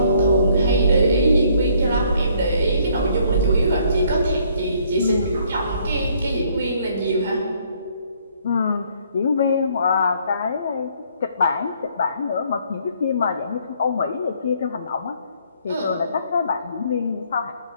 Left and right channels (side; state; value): both; inverted; correlation -0.65